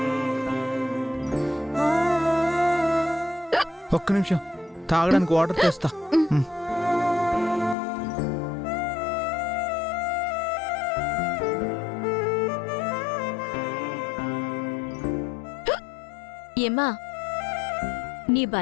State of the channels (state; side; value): drops out; right; at 7.8 s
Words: ఒక్క నిమిషం తాగడానికి వాటర్ తెస్తా. ఏమ్మా, నీ